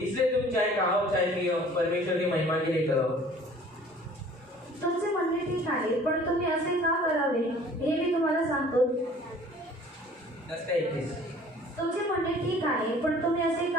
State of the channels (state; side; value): normal; both; correlation 0.51